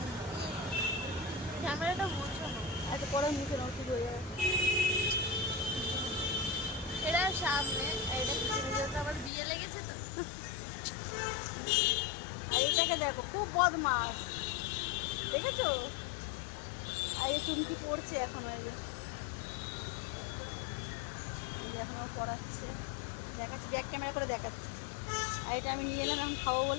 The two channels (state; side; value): drops out; right; at 9.3 s